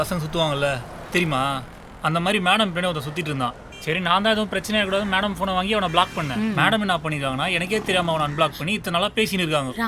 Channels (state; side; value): identical; both; correlation 1.00